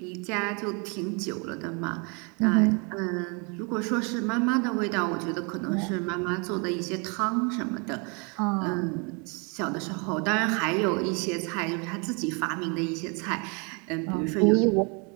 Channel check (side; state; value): left; quieter; 33.3 dB